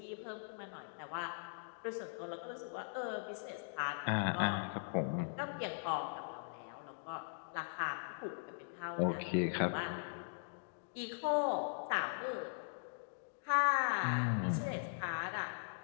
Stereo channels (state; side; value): silent; right; digital silence